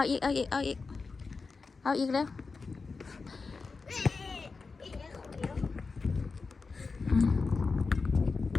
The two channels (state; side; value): quieter; right; 4.4 dB